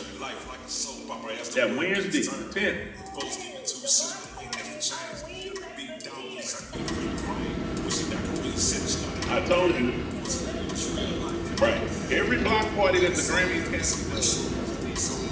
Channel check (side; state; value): both; identical; correlation 1.00